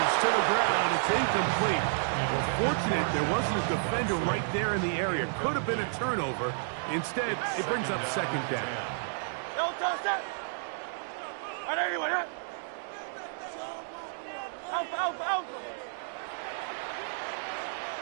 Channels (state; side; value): silent; left; digital silence